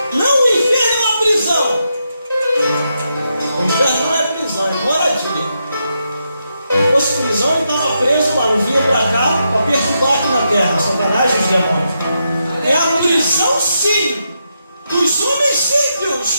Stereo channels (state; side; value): inverted; both; correlation -0.83